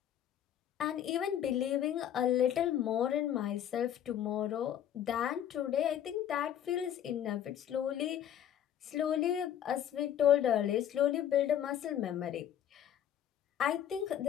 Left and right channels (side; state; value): right; quieter; 10.2 dB